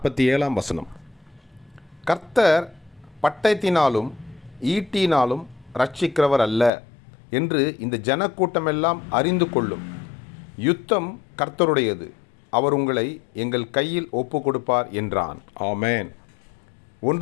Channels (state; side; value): drops out; right; at 6.7 s